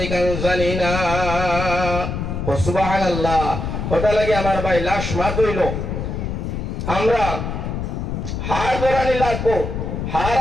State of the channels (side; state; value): left; noise; rumble, 4 dB below the sound